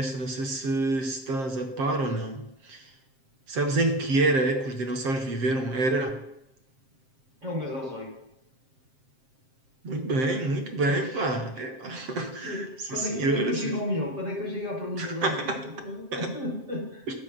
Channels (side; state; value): left; late; 7.6 ms